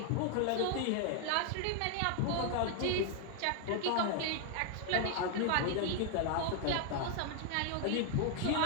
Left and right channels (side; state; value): both; different; correlation 0.00